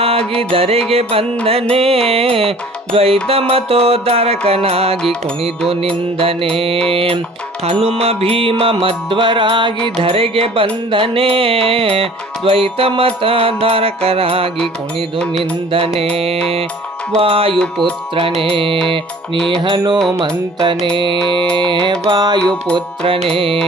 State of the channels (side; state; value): both; normal; correlation 0.49